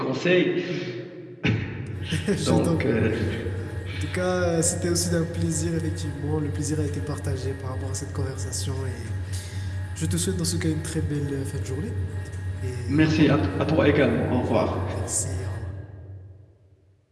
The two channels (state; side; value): identical; both; correlation 1.00